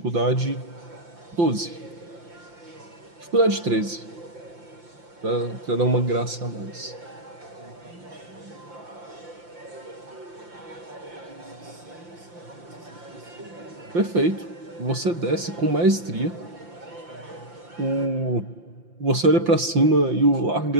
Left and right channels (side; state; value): left; late; 5.8 ms